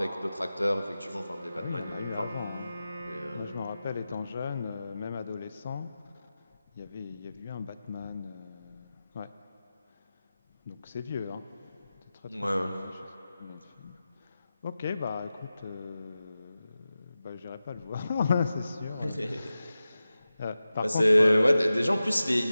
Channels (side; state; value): both; inverted; correlation -0.94